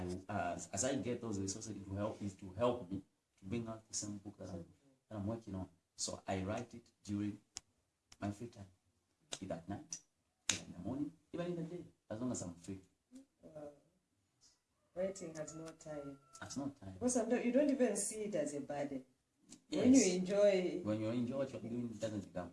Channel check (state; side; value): identical; both; correlation 1.00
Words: as I get those resources, it will help me to bring out the same book that I'm working on. So I write it during my free time, either at night, either in the morning, even in the day, as long as I'm free. Writing has no time. That's not time. Because sometimes you don't even see it as a burden. Yes. When you enjoy, what you're doing, it doesn't become.